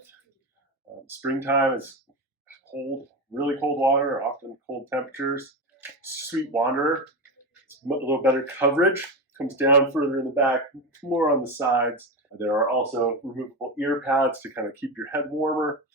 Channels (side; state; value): both; normal; correlation 0.18